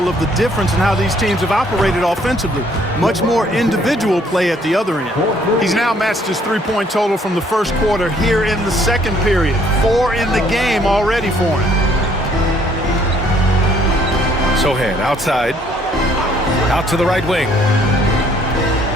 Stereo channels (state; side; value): normal; both; correlation 0.63